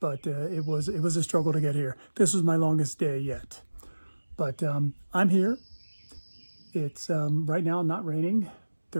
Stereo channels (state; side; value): inverted; both; correlation -1.00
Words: but it was a struggle to get here. This was my longest day yet, but I'm here. It's right now not raining.